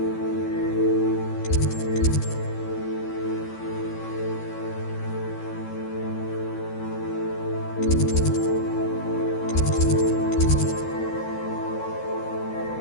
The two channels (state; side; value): late; right; 13 ms